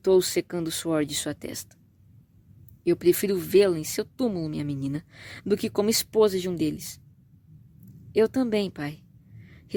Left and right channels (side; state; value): both; identical; correlation 1.00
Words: secando o suor de sua testa. "Eu prefiro vê-la em seu túmulo, minha menina, do que como esposa de um deles." "Eu também, pai",